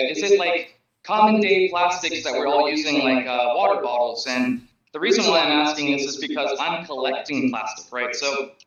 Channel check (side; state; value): both; identical; correlation 1.00